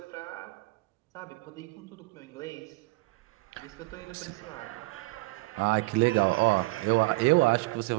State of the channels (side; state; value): left; quieter; 23.7 dB